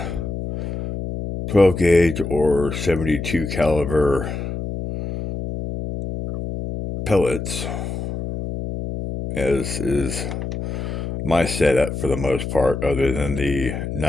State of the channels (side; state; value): left; noise; hum, 5 dB below the sound